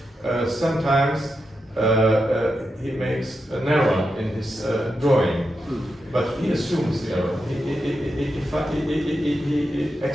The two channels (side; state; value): both; normal; correlation 0.87